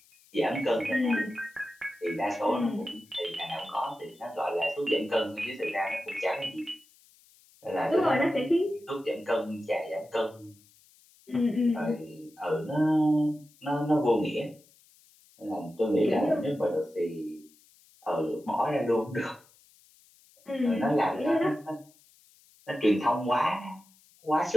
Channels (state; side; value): noise; left; hiss, 29 dB below the sound